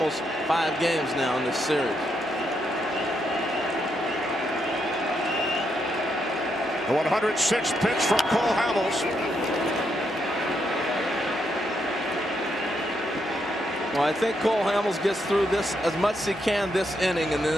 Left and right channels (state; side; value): normal; both; correlation 0.79